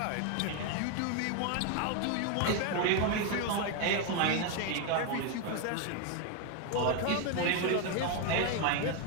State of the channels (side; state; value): both; different; correlation 0.01